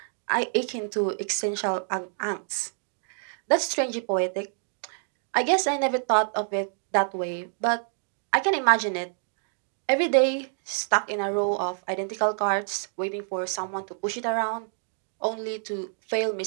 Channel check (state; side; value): silent; left; digital silence